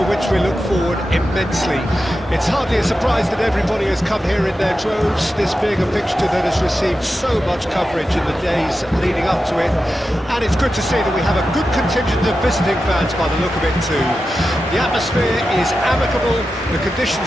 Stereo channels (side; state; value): both; normal; correlation 0.91